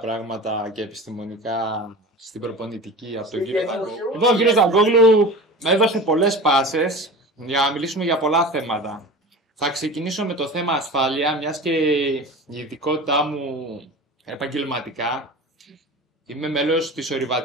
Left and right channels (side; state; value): both; normal; correlation 0.34